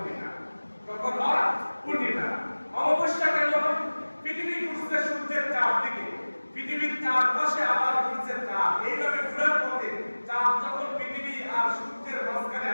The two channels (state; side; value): inverted; both; correlation -1.00